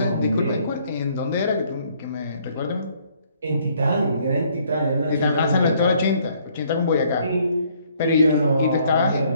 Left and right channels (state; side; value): inverted; both; correlation -0.64